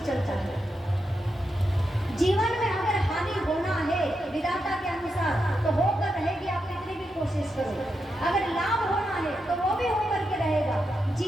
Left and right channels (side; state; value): both; normal; correlation 0.85